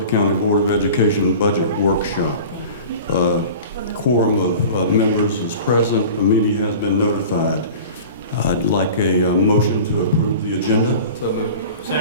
County Board of Education Budget Workshop. Quorum of members is present. The meeting has been notified. I'd like a motion to approve the agenda. So moved.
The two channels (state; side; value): inverted; both; correlation -0.39